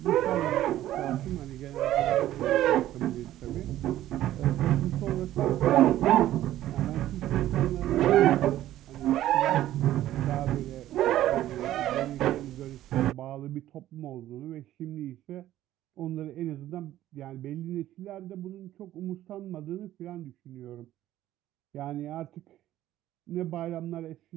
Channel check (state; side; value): quieter; left; 13.6 dB